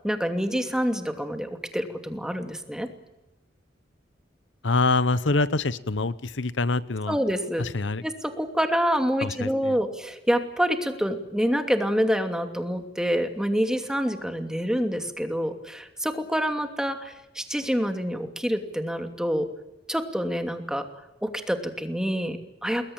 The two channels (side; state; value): both; normal; correlation 0.76